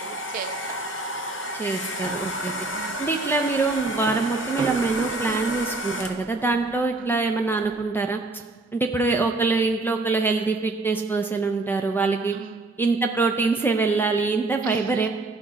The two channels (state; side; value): quieter; left; 3.2 dB